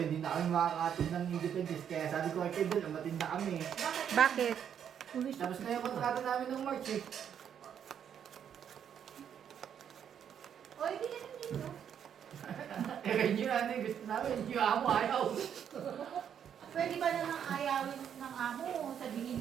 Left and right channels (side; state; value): left; quieter; 8.6 dB